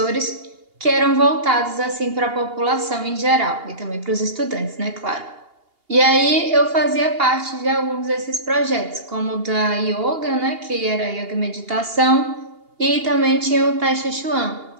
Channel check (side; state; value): left; late; 2.8 ms